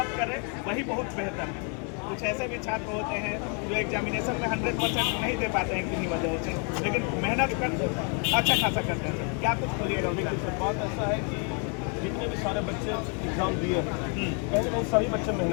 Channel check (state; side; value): quieter; right; 38.6 dB